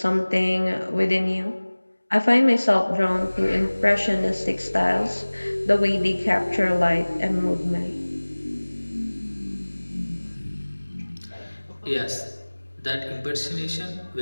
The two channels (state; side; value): inverted; both; correlation -1.00